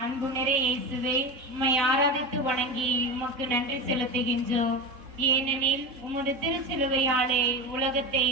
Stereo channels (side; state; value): left; late; 3.7 ms